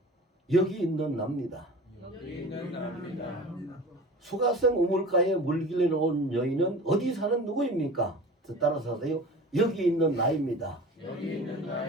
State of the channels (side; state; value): both; normal; correlation 0.38